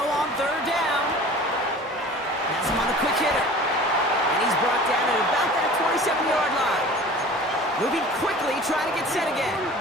3rd down. Has him on the quick hitter. And he's brought down at about that 27-yard line. Moving quickly, trying to get set again.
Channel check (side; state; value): both; normal; correlation 0.42